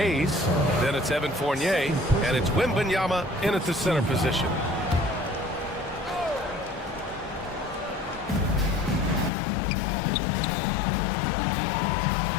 Then it's Evan Fournier. And it's Wembanyama in at the center position.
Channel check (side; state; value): right; drops out; at 9.3 s